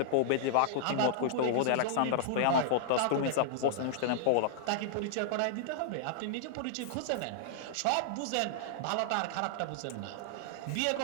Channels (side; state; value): both; different; correlation -0.01